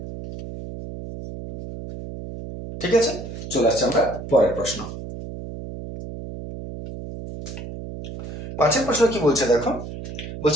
ঠিক আছে, চলে আসছে আমরা পরের প্রশ্ন। 5 প্রশ্ন কি বলছে দেখো,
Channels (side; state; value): right; noise; hum, 10 dB below the sound